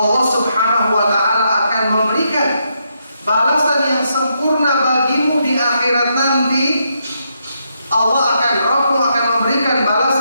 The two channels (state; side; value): inverted; both; correlation -0.79